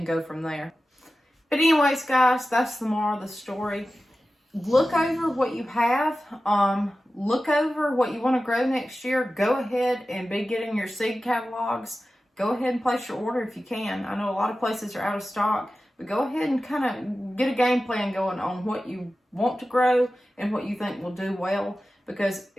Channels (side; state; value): both; normal; correlation 0.94